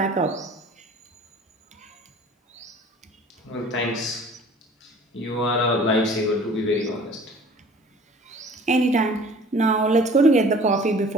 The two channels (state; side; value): normal; both; correlation 0.48